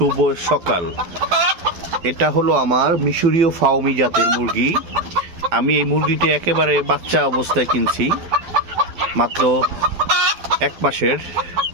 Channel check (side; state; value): left; late; 12 ms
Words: সকাল। এটা হলো আমার মিশরীয় ফাউমি জাতের মুরগি। আমি এই মুরগিটি একেবারে বাচ্চা অবস্থায় কিনছি, মাত্র 1 মাসের